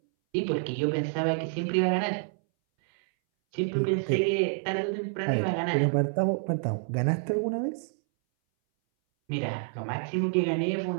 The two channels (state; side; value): silent; left; 59 dB below the other